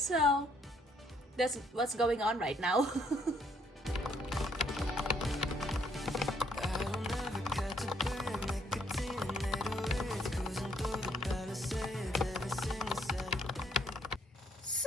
that's what's going on right now.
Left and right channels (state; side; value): normal; both; correlation 0.69